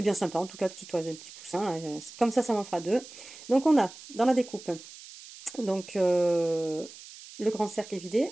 bien sympa, en tout cas, petit oiseau, un petit poussin, là, comme ça m'en fera deux. Donc on a, dans la découpe, donc le grand cercle est vidé,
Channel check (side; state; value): right; noise; hiss, 17 dB below the sound